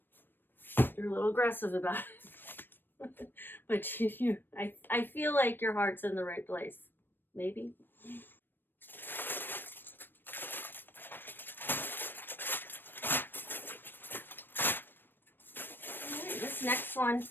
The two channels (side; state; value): right; late; 0.095 ms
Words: You're a little aggressive about it. But I feel like your heart's in the right place. Maybe. Right, this next one,